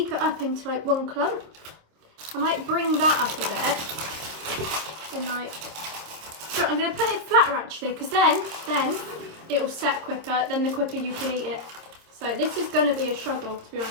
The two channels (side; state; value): left; late; 26 ms